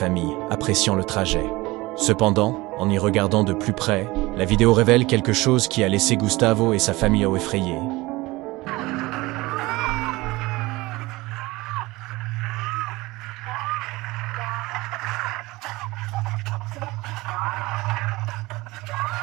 appréciant le trajet. Cependant, en y regardant de plus près, la vidéo révèle quelque chose qui a laissé Gustavo et sa famille effrayés.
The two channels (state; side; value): quieter; left; 21.0 dB